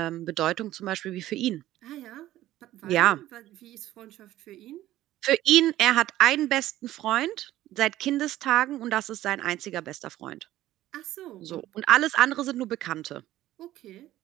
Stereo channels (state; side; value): quieter; left; 14.6 dB